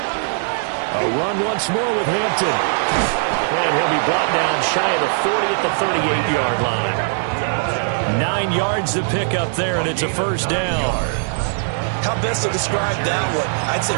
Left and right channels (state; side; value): silent; left; digital silence